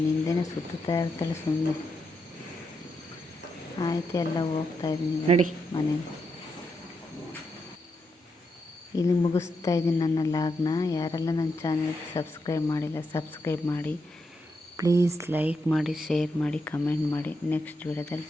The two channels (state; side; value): normal; both; correlation 0.83